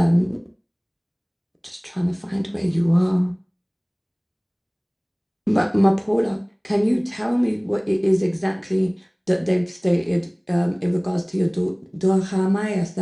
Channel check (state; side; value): identical; both; correlation 1.00